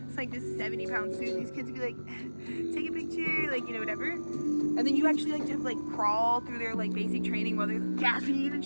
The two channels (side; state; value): both; inverted; correlation -1.00